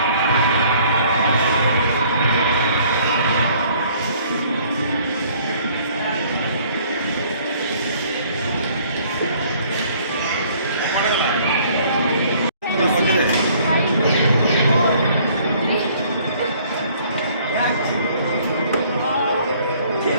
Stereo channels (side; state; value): both; inverted; correlation -0.58